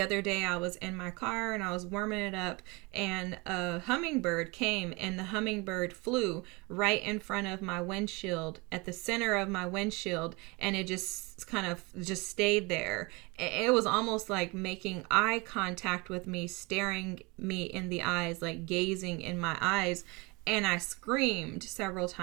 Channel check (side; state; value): left; quieter; 26.5 dB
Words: day I was in my car and I was warming it up, and a hummingbird came, and the hummingbird flew right in front of my windshield, at the center of my windshield, and it just kind of just stayed there. It was almost like making eye contact with me, staring me in the eyes, like gazing in my eyes. And I screamed several